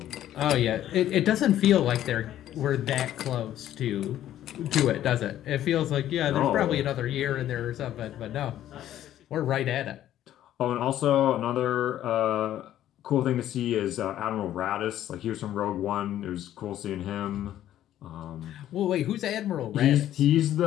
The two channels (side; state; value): right; quieter; 12.2 dB